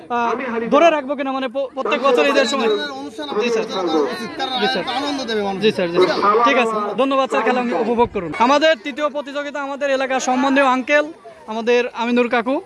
ধরে রাখবো কিনা, মানে প্রত্যেক বছর ঈদের সময়? জি স্যার, জি স্যার, জি ঠিক আছে, ধন্যবাদ স্যার, খেলা উপভোগ করুন। আমাদের তৃতীয় প্রতিযোগিতা, আমাদের এলাকার সম্বন্ধীয় আঙ্কেল আমাদের আমিনুর কাকু,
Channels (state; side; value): identical; both; correlation 1.00